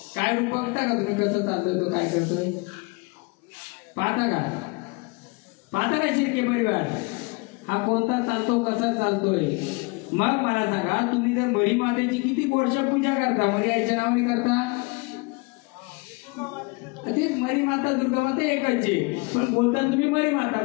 काय रूप बघता का तुम्ही कसं चालतोय, तो काय करतोय पाहता का? पाहता का शिर्के परिवार हा कोणता चालतो, कसा चालतोय? मग मला सांगा, तुम्ही जर मरी मातेची किती वर्ष पूजा करता, मरी आईच्या नावाने करता? तेच मरी माता दुर्गा माता एकाची, पण बोलता तुम्ही मरी माता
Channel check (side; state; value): right; quieter; 28.6 dB